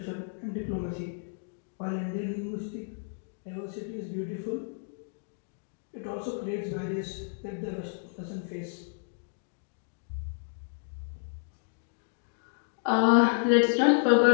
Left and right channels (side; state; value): right; silent; digital silence